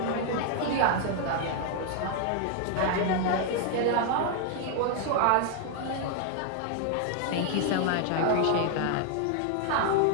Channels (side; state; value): both; different; correlation 0.00